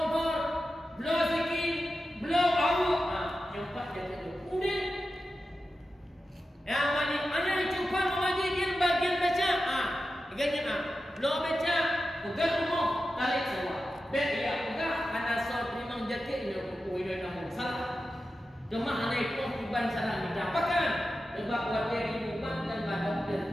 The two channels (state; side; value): normal; both; correlation 0.92